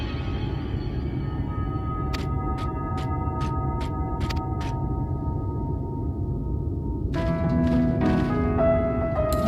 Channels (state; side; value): identical; both; correlation 1.00